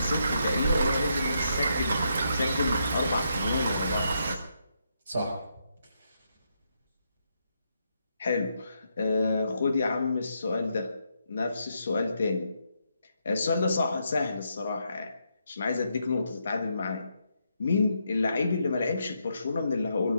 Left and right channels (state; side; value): inverted; both; correlation -0.79